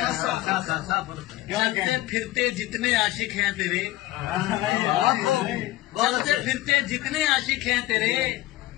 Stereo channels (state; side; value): quieter; right; 16.9 dB